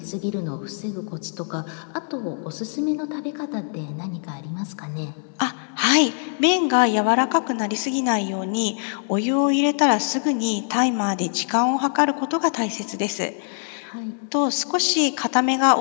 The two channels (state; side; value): silent; right; 63 dB below the other